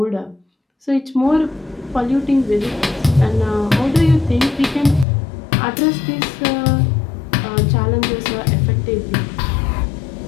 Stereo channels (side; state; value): right; drops out; at 5.1 s